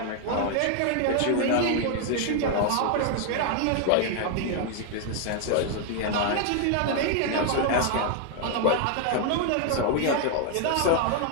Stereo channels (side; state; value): both; different; correlation 0.00